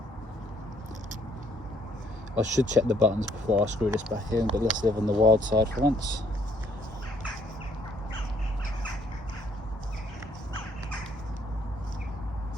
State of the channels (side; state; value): both; normal; correlation 0.66